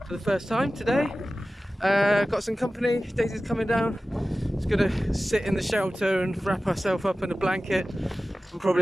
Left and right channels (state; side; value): normal; both; correlation 0.96